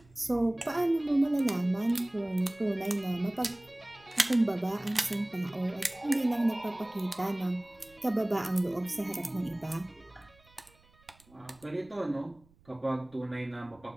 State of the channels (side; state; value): right; noise; rumble, 29 dB below the sound